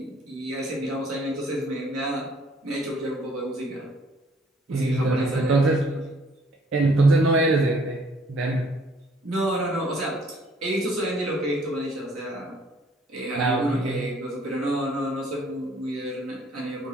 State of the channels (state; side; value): normal; both; correlation 0.61